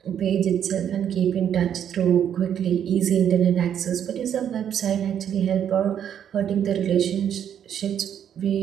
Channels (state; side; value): quieter; left; 9.2 dB